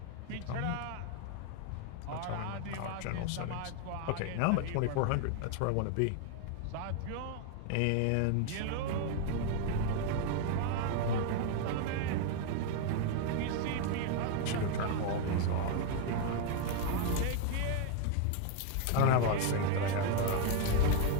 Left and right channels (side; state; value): both; different; correlation 0.01